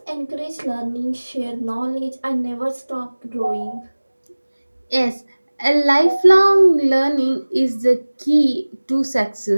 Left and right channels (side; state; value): both; inverted; correlation -1.00